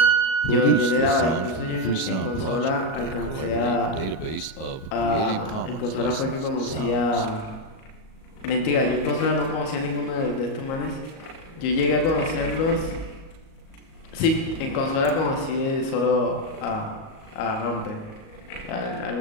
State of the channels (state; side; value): late; right; 37 ms